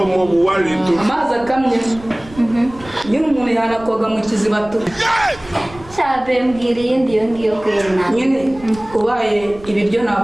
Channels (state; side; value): noise; right; rumble, 19 dB below the sound